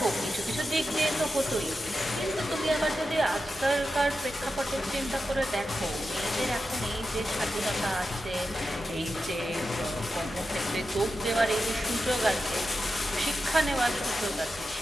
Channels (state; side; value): normal; both; correlation 0.90